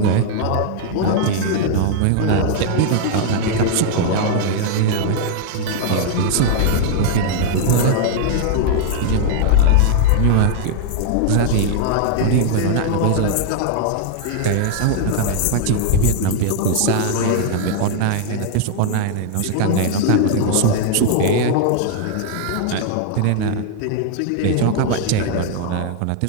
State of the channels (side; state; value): both; different; correlation 0.00